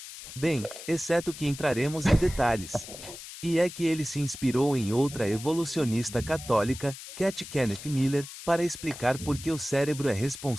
Bem, exceto que entraremos em detalhes. E é que ele se inspirou em outra evolucionista católica, Cat Kenneth Miller, para explicar por que o cérebro é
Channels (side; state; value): left; noise; hiss, 13 dB below the sound